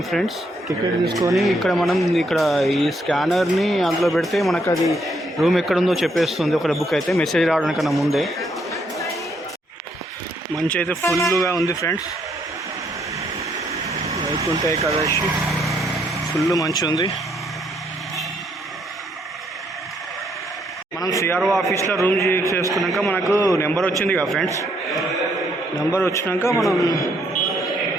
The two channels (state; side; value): normal; both; correlation 0.72